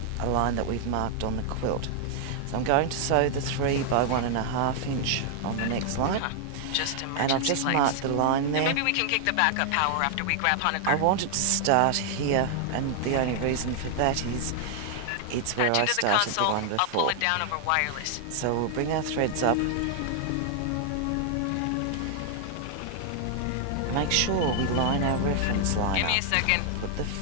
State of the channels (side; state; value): both; different; correlation 0.00